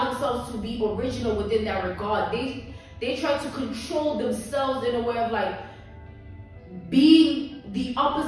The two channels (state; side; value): identical; both; correlation 1.00